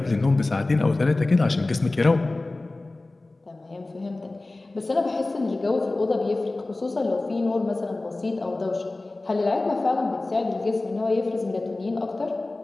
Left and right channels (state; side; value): quieter; right; 3.0 dB